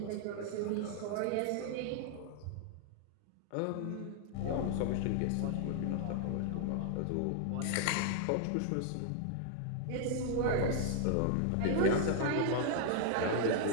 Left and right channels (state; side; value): different; both; correlation 0.00